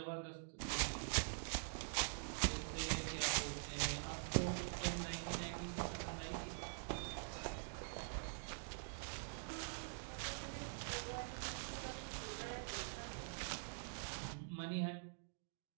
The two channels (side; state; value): left; silent; digital silence